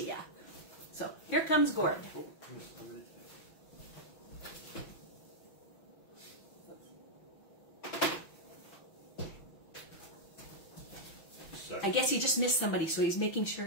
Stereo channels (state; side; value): late; right; 5.9 ms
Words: you. So here comes Gord. I guess he just missed somebody, so he's making sure